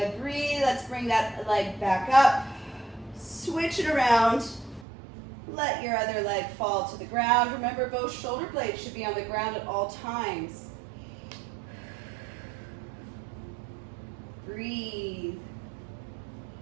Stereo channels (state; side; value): drops out; left; at 4.9 s